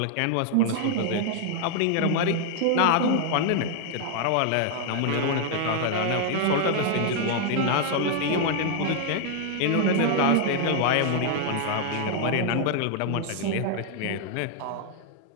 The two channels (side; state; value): both; different; correlation 0.00